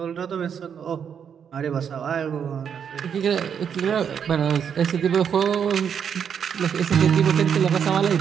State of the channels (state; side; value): quieter; left; 7.7 dB